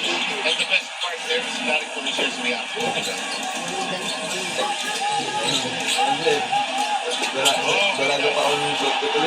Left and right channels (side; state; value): both; identical; correlation 1.00